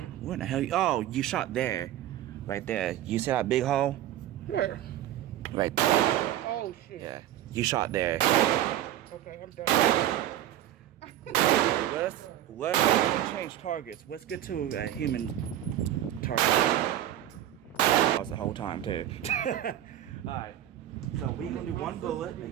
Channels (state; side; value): quieter; left; 12.4 dB